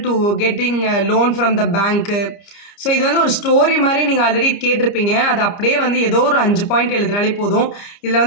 to getting loan from the bank. So இது வந்து ஒரு ஸ்டோரி மாதிரி நீங்கள் ஆல்ரெடி கேட்டிருப்பீங்க. அது அப்படியே வந்து ஏதோ ஒரு 5 பாயிண்ட் எழுதினாலே போதும். இதில்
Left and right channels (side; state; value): right; late; 29 ms